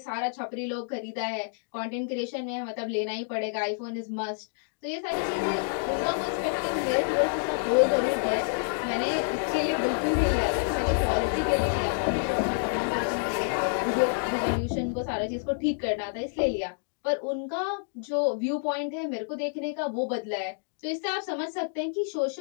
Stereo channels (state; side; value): silent; right; digital silence